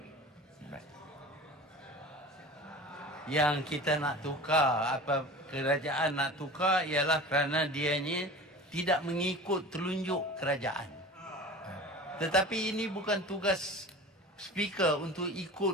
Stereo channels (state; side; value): normal; both; correlation 0.37